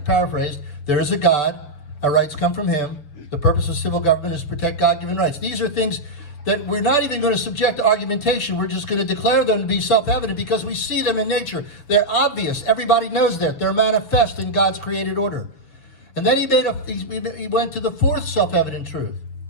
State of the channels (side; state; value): right; late; 7.0 ms